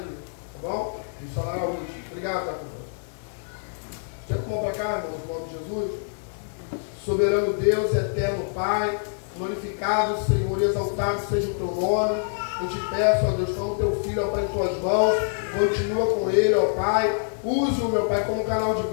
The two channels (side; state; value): right; silent; 61 dB below the other